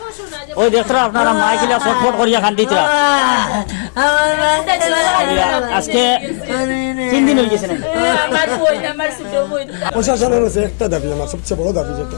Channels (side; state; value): right; silent; digital silence